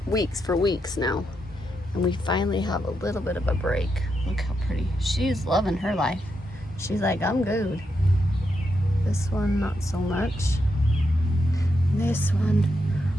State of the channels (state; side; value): normal; both; correlation 0.83